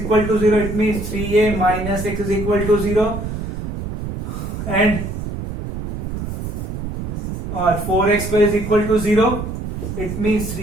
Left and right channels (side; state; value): right; noise; rumble, 5 dB below the sound